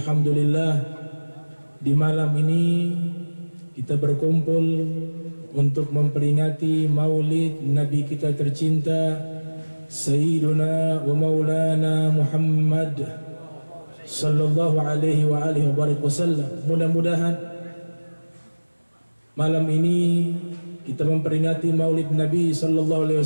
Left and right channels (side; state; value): both; inverted; correlation -1.00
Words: di malam ini kita berkumpul untuk memperingati maulid Nabi kita tercinta Sayyiduna wa Maulana Muhammad sallallahu alaihi wa alihi wasallam. Mudah-mudahan malam ini kita memperingati maulid Nabi sallallahu alaihi